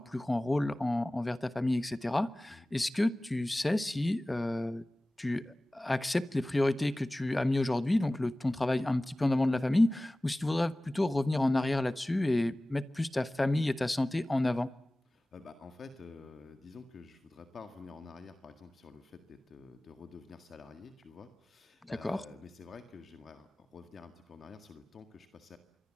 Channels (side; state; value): both; normal; correlation 0.98